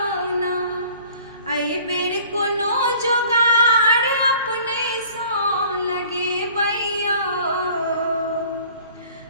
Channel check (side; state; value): both; inverted; correlation -0.51